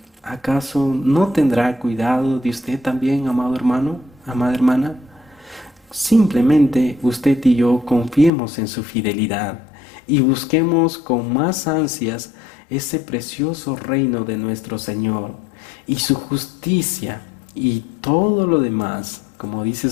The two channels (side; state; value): right; drops out; at 8.3 s